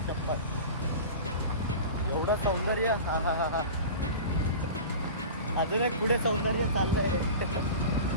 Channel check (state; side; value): inverted; both; correlation -0.33